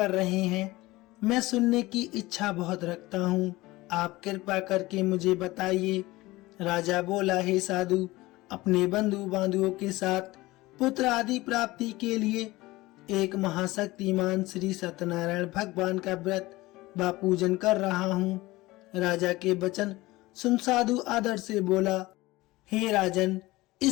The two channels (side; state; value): right; quieter; 19.7 dB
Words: रहे हैं? मैं सुनने की इच्छा बहुत रखता हूँ, आप कृपा करके मुझे बताइए। राजा बोला, हे साधु, अपने बंधु बांधवों के साथ पुत्र आदि प्राप्ति के लिए एक महाशक्तिमान श्री सत्यनारायण भगवान का व्रत व पूजन कर रहा हूँ। राजा के वचन सुन साधु आदर से बोला, हे राजन,